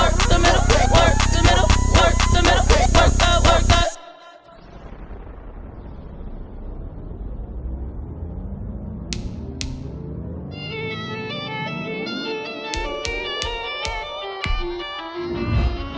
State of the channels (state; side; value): identical; both; correlation 1.00